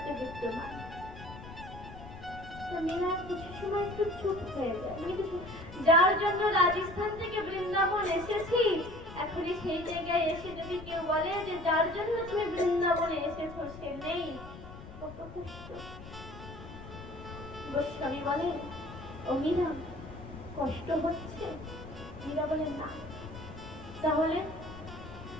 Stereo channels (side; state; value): left; noise; rumble, 14 dB below the sound